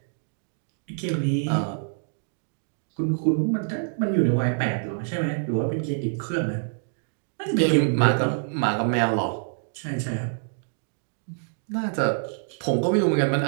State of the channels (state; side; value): silent; left; digital silence